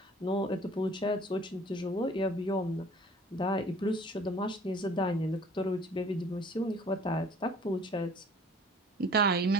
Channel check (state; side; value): normal; both; correlation 0.51